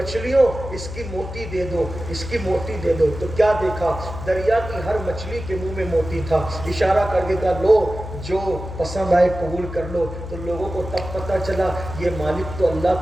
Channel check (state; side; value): noise; left; hum, 9 dB below the sound